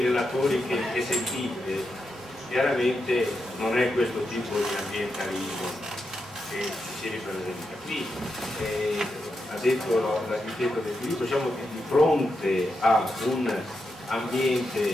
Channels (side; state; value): both; normal; correlation 0.86